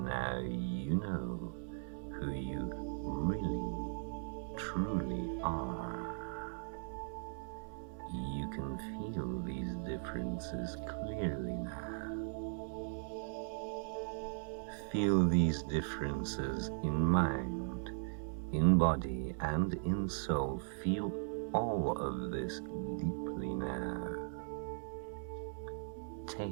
You know who you really, truly are. You can feel these differences clearly now. Feel these differences in mind, in body, and in soul. Feel all of this deeply now.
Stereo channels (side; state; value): left; silent; digital silence